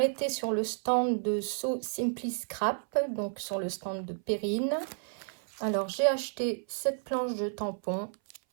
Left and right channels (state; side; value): silent; left; 57 dB below the other